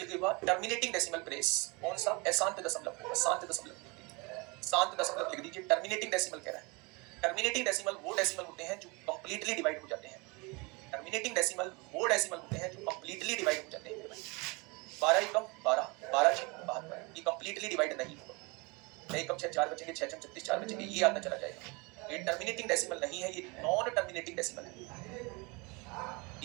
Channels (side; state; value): left; quieter; 27.9 dB